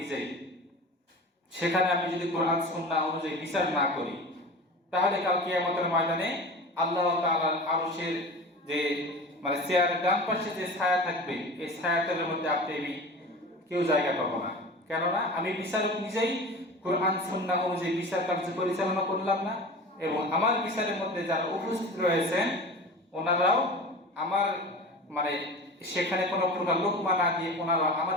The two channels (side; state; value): both; normal; correlation 0.34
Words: সেখানে আমি যদি কোরআন সুন্নাহ অনুযায়ী বিচার না করি, তাহলে কাল কিয়ামতের ময়দানে আল্লাহ তাআলার আরশের যে চেয়ারের ডান পাশে যে ছায়া থাকবে, এই ছায়াতলের মধ্যে আপনি কেউ জায়গা পাবো না। কেননা আমি বিচারক নিজেই কোরআন সুন্নাহ অনুযায়ী বিচার কার্য পরিচালনা করলাম না, এবং আমার বিচারের মধ্যে যারা উপস্থিত রয়েছেন ওনারাও আমার সেখানে কোনো প্রকার লোকমা না দিয়ে ওনারা